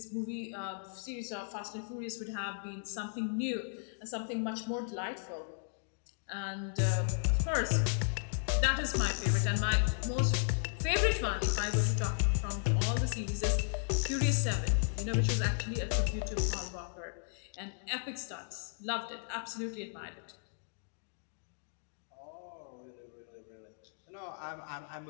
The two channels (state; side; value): silent; right; digital silence